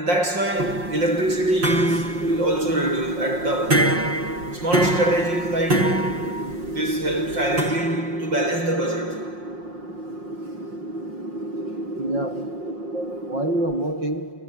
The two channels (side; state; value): left; late; 5.6 ms